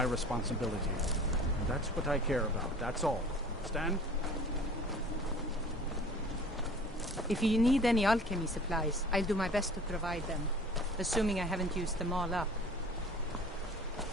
responsibility. And that's what I care about. That's all. Understand? If you need any alchemy supplies, I'll do my best to provide them. Assuming I haven't used them all up.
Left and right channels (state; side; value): normal; both; correlation 0.46